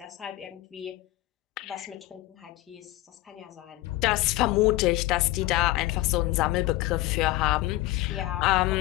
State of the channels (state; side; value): quieter; right; 17.6 dB